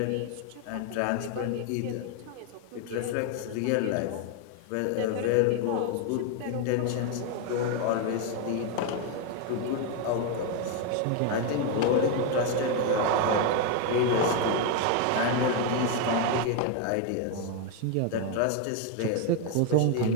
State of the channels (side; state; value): both; different; correlation 0.01